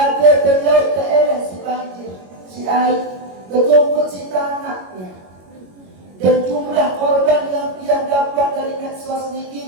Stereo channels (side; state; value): left; late; 21 ms